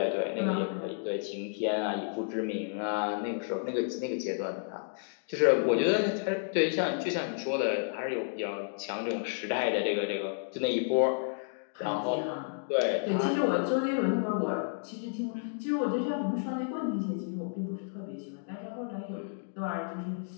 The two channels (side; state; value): right; silent; digital silence